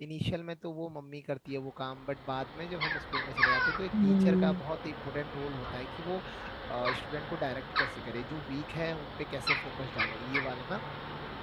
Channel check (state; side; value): identical; both; correlation 1.00